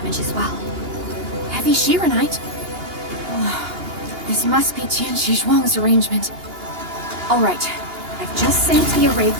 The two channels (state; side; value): late; left; 2.8 ms